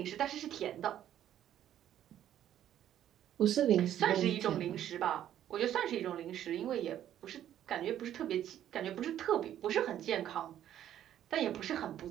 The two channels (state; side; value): quieter; left; 11.2 dB